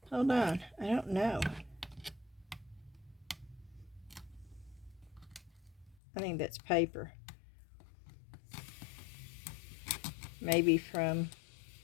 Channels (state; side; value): drops out; right; at 6.0 s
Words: Hold on, I don't know. I think that's paper. Maybe from,